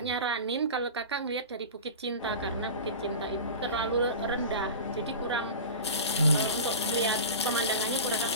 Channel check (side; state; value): both; inverted; correlation -0.31